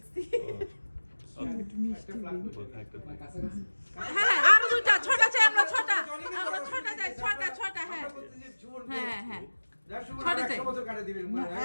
হ্যাঁ আর দুইটা ছটা চাই, আমরা ছটা চাই, ছটা হ্যাঁ হ্যাঁ হ্যাঁ ছটা চাই।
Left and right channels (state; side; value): inverted; both; correlation -1.00